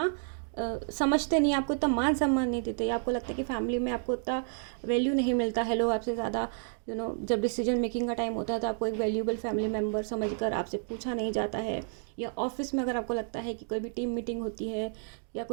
समझते नहीं, आपको इतना मान सम्मान नहीं देते, या आपको लगता है कि फैमिली में आपको इतना वैल्यू नहीं मिलता है, लोग आपसे ज़्यादा जब डिसीजन मेकिंग का टाइम होता है तो आपको एक वैल्यूबल फैमिली मेम्बर समझकर आपसे पूछा नहीं जाता है, या ऑफिस में अगर आपको लगता है कि कोई भी टीम मीटिंग होती है या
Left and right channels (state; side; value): silent; left; 57 dB below the other